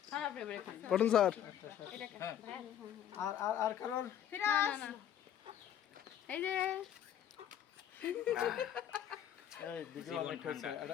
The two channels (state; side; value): quieter; right; 10.2 dB